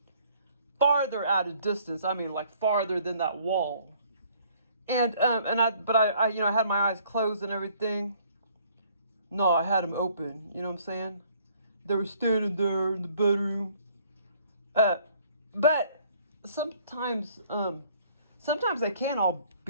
farther out of distance. I mean, like farther than that wall. And I had my eyes closed and everything. No, I had them open. You know what I'm saying? They were standing there in the bedroom. But sometimes they can all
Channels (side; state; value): both; inverted; correlation -0.60